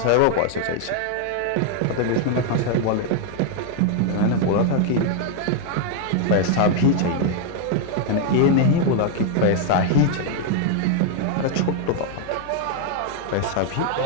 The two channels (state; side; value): different; both; correlation 0.00